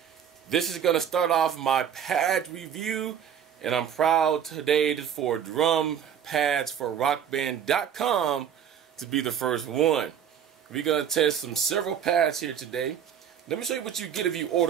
This is going to start off my pad review, and I'm proud today for Drumpads4rockband.com to be the first one. We're going to test several pads here today. Let me show you what you get if you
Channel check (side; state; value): left; quieter; 8.7 dB